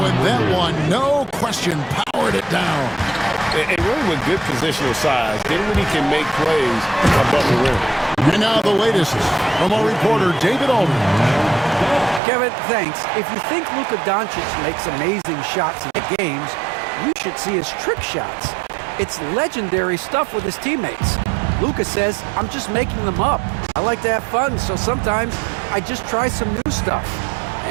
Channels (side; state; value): left; drops out; at 12.2 s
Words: that one, no question, powered it down. And really with good positional size, Dinwiddie can make plays above the rim. And now the latest from our reporter, David Aldridge. Kevin, thanks. If you think Luka Doncic makes amazing shots in the games, you should see his trick shots. It's legendary stuff with his teammates. Luka says, I'm just making them up. I like to have fun, so sometimes I just try some new stuff.